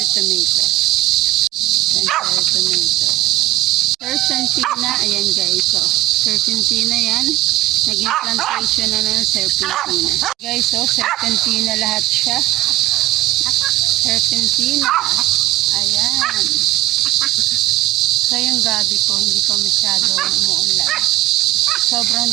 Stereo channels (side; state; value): left; quieter; 16.7 dB